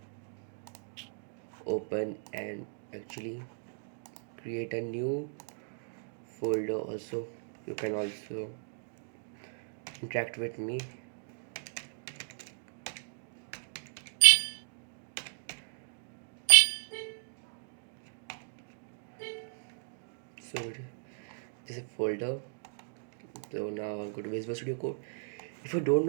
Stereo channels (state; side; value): silent; left; digital silence